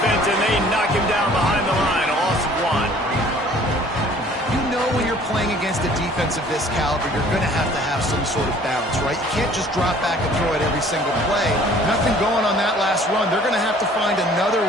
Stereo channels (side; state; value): both; normal; correlation 0.53